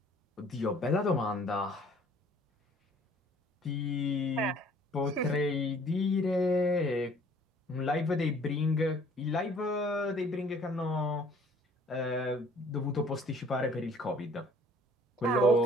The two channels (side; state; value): both; normal; correlation 0.56